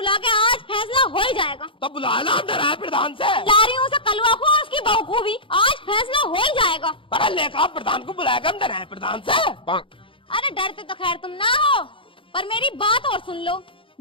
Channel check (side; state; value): right; late; 0.25 ms